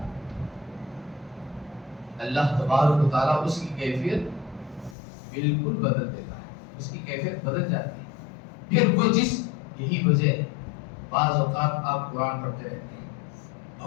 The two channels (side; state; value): right; drops out; at 5.0 s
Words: اللہ تبارک و تعالیٰ اس کی کیفیت بالکل بدل دیتا ہے, اس کی کیفیت بدل جاتی ہے. پھر وہ یہی وجہ ہے بعض اوقات آپ قرآن پڑھتے رہتے ہیں,